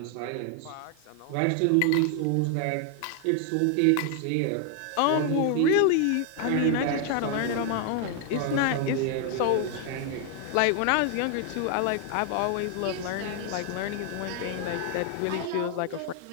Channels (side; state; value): both; different; correlation 0.00